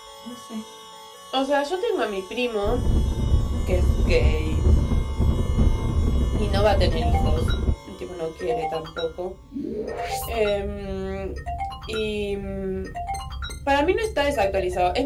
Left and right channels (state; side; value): identical; both; correlation 1.00